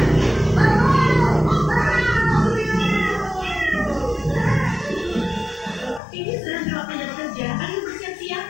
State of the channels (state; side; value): drops out; right; at 6.0 s